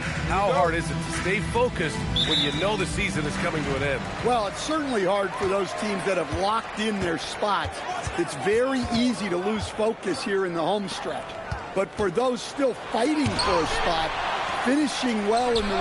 How hard is it to stay focused when you know the season is coming to an end? Well, it's certainly hard for those teams that have locked in their spots. It's very easy to lose focus here in the home stretch. But for those still fighting for a spot, finishing well in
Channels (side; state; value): both; identical; correlation 1.00